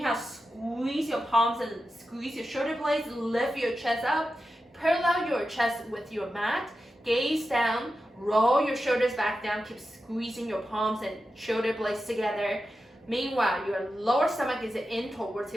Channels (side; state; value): both; normal; correlation 0.91